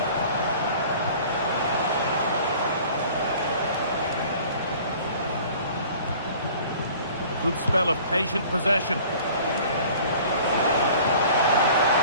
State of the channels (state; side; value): inverted; both; correlation -0.48